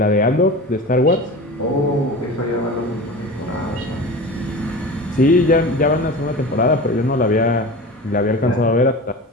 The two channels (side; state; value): both; normal; correlation 0.32